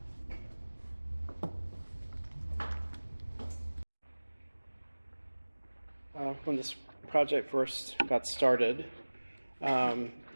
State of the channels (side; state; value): both; inverted; correlation -1.00